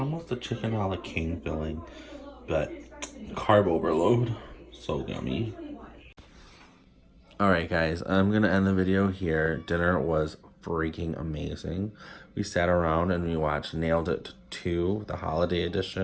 a chicken a la king filling, but carb overload. So yummy. Alright guys, I'm gonna end the video here. Dinner was freaking amazing. We sat around and we watched Nailed It 2, the holiday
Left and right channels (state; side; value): identical; both; correlation 1.00